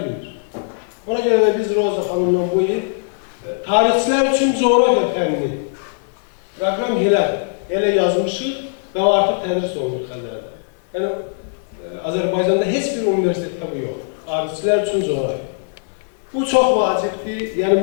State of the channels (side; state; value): right; silent; 58 dB below the other